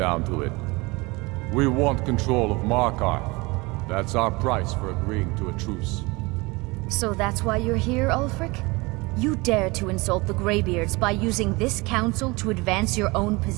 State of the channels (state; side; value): quieter; left; 24.7 dB